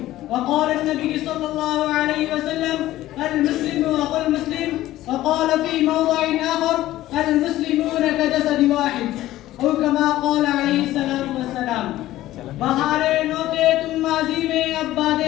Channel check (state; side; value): quieter; right; 15.1 dB